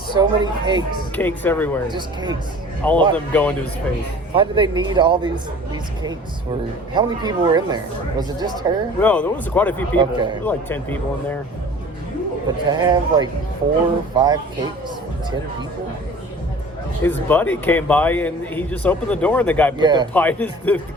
many cakes. Cakes everywhere. Just cakes. All of them go into his face. Why do they need all these cakes? How many people were in there? Was it just her? No, there was quite a few people. Okay. There were like 10 people in there. But to have like 4 or 5 cakes for 10 people? His buddy came by and he just opened the door and the guy put the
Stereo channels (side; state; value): both; normal; correlation 0.45